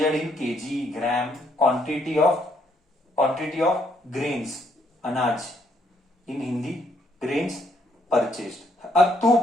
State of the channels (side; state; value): both; normal; correlation 0.71